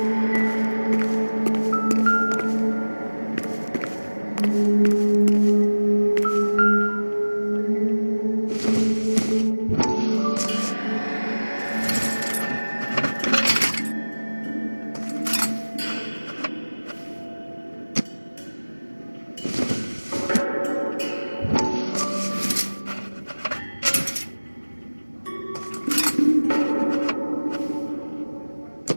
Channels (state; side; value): inverted; both; correlation -1.00